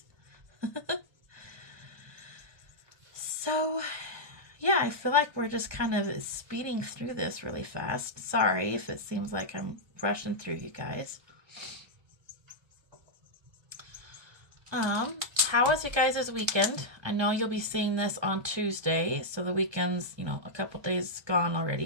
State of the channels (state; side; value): late; left; 1.2 ms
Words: So, yeah, I feel like we're just kind of speeding through this really fast. Sorry if it seems like I'm rushing through, you guys. How was you guys' weekend? I know you'll be seeing this on Tuesday, so the weekend's, a couple days gone